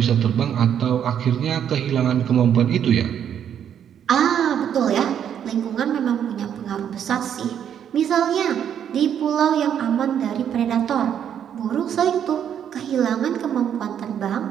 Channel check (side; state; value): left; quieter; 9.1 dB